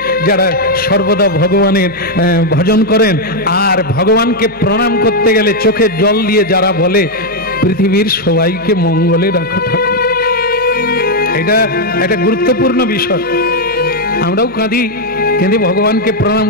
যারা সর্বদা ভগবানের ভজন করেন, আর ভগবানকে প্রণাম করতে গেলে চোখের জল দিয়ে যারা বলে পৃথিবীর সবাইকে মঙ্গলে রাখো ঠাকুর, এটা একটা গুরুত্বপূর্ণ বিষয়। আমরাও কাঁদি, কেঁদে ভগবানকে প্রণাম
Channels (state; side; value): noise; right; hum, 26 dB below the sound